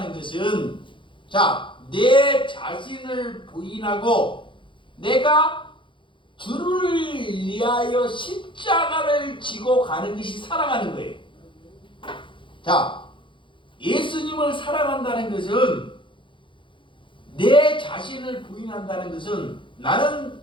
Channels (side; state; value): right; late; 0.24 ms